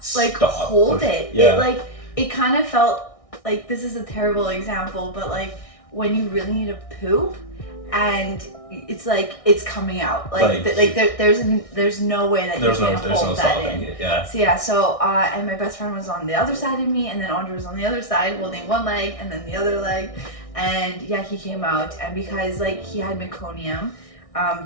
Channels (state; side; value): late; right; 1.6 ms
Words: like hold it. Yeah. It kind of felt like, this is a terrible example, but like when you really need to poop, and it's like it's coming out. There's no way that you can hold that in. It, yeah. So yeah, and my best friend was on the other side of me, and then Andrey was on the other side holding one leg and then the other leg, and yeah, he came out, and because like he had meconium,